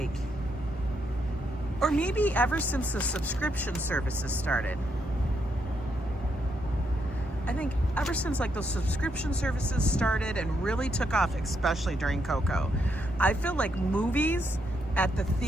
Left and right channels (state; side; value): normal; both; correlation 0.78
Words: or maybe ever since the subscription services started. I think ever since like those subscription services started and really took off, especially during Coco, I feel like movies at the